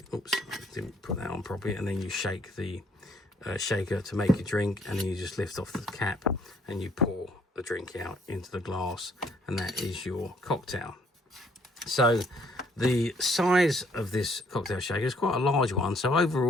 oops, I didn't put that on properly, and then you shake the shaker to make your drink, and then you just lift off the cap and you pour the drink out into the glass, and that is your cocktail. So the size of this cocktail shaker is quite a large one. So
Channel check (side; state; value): both; normal; correlation 0.65